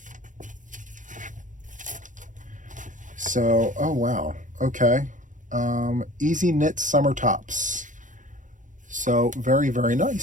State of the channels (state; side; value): late; left; 0.37 ms